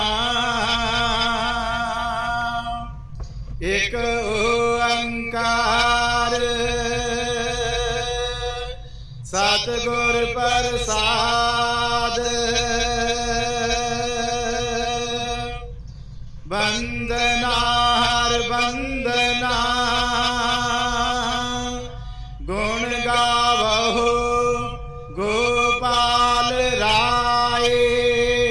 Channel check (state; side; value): identical; both; correlation 1.00